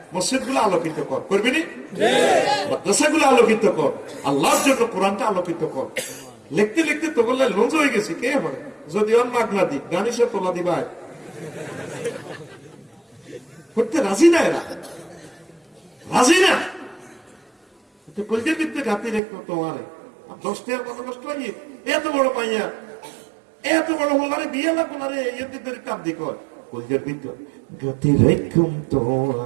মসজিদ গুলো আলোকিত কর, করবি নি? মাদ্রাসা গুলো আলোকিত কর, আল্লাহর জন্য কোরআনটা আলোকিত কর। লিখতে লিখতে তো বললে লঞ্চ হয়ে গেছি, কে হবে যদি ওর মাগ না দি গানি সে তোলা দিবা করতে রাজি না, এরা রাজি না। কলজের ভিতরে ঘাতি রেখো তোমার 10 টাকার মতো নষ্ট হয়ে এত বড় পাইয়া এত বড় হলারে বিয়ে লাগবো না রে, এর কাপ দি কর কলজের ভিতর ঘাতি রেখুম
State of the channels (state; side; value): drops out; left; at 19.2 s